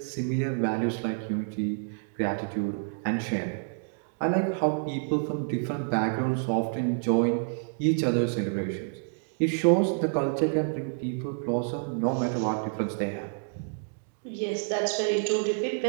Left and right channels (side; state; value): left; silent; digital silence